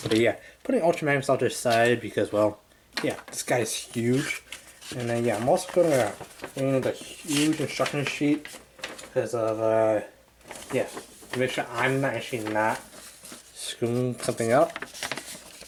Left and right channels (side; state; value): both; identical; correlation 1.00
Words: But yeah, putting Ultra Magnus off to the side because, well, yeah, this guy is huge. And then yeah, I'm also gonna bring the huge instruction sheet because of yeah, to make sure I'm not screwing something up.